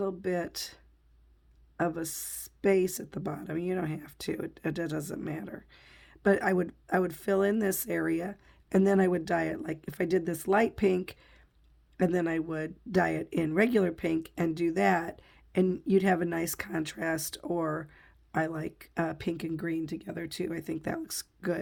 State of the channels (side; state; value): both; identical; correlation 1.00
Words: bit of a space at the bottom. You don't have to. It doesn't matter. But I would fill in this area, and then I would dye it like if I did this light pink, and then I would dye it in regular pink and do that, and you'd have a nice contrast. Or I like pink and green together too. I think that looks